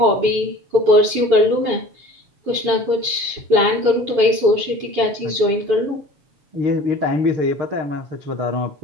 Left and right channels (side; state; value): left; late; 7.0 ms